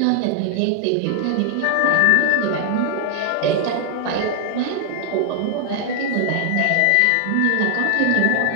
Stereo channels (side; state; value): both; different; correlation 0.00